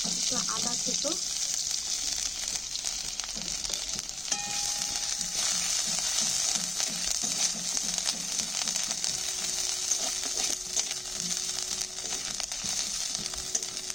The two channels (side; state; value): both; normal; correlation 0.96